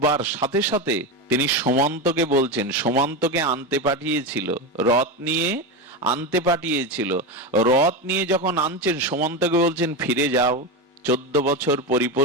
সাথে সাথে তিনি সুমন্তকে বলছেন, সুমন্তকে আনতে পাঠিয়েছিল, রথ নিয়ে আনতে পাঠিয়েছিল। রথ নিয়ে যখন আনছেন, সুমন্তকে বলছেন ফিরে যাও, 14 বছর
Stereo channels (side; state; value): both; normal; correlation 0.16